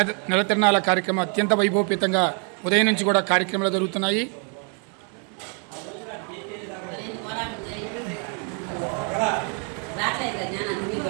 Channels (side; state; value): left; quieter; 39.6 dB